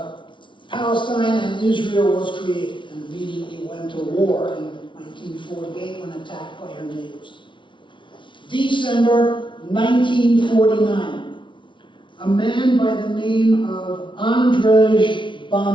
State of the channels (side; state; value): right; late; 0.24 ms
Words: Palestine, and Israel was created and immediately went to war in 1948 when attacked by her neighbors. December 1949. A man by the name of Andrzej